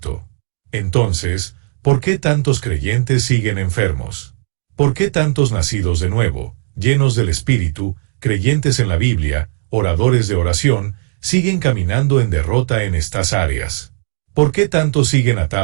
Entonces, ¿por qué tantos creyentes siguen enfermos? ¿Por qué tantos nacidos de nuevo, llenos del Espíritu, creyentes en la Biblia, oradores de oración, siguen caminando en derrota en estas áreas? ¿Por qué tantos siguen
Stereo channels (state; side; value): silent; left; digital silence